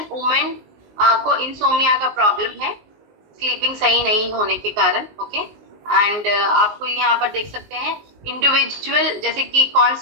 वुमेन को इंसोमिया का प्रॉब्लम है, स्लीपिंग सही नहीं होने के कारण। ओके, एंड आपको यहाँ पर देख सकते हैं इंडिविजुअल, जैसे कि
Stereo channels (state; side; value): late; left; 19 ms